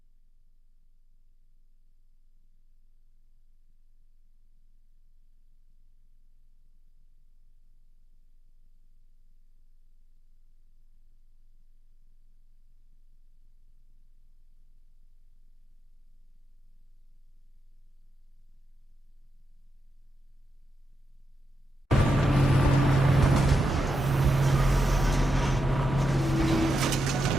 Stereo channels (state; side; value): normal; both; correlation 0.85